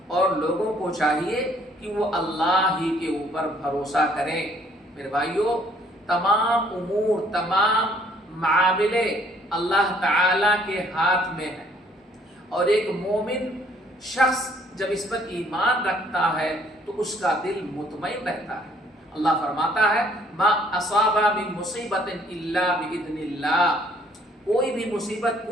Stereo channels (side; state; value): both; normal; correlation 0.62